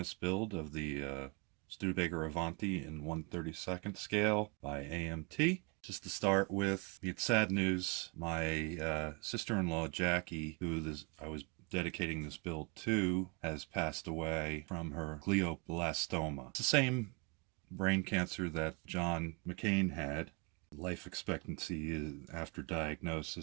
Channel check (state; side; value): quieter; left; 31.9 dB